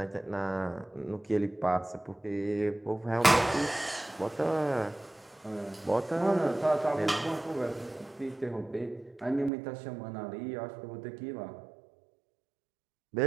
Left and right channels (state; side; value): drops out; left; at 9.5 s